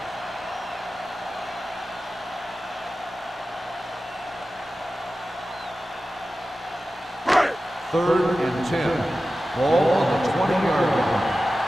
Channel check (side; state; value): both; normal; correlation 0.94